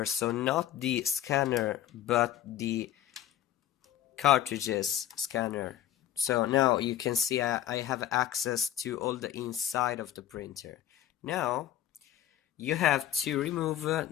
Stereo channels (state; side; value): quieter; right; 11.8 dB